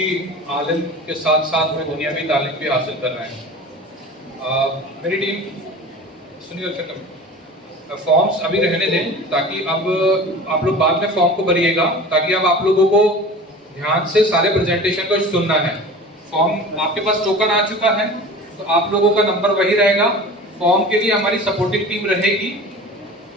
आलिम के साथ साथ में दुनियावी तालीम भी हासिल कर रहे हैं। मेरी टीम सुनिए, फॉर्म्स अभी रहने दें ताकि अब आप लोग बाद में फॉर्म को भरिएगा, ताकि अब आप लोगों को ध्यान से सारे प्रेजेंटेशन को सुनना है। फॉर्म आपके पास टोकन आ चुका है तो आप लोगों का नंबर वही रहेगा। फॉर्म के लिए हमारी सपोर्टिंग टीम रहेगी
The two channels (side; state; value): both; normal; correlation 0.38